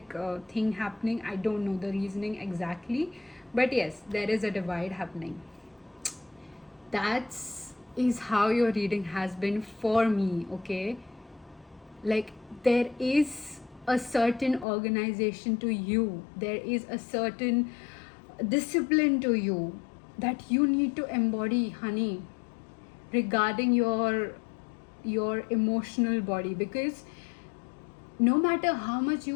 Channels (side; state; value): right; drops out; at 14.7 s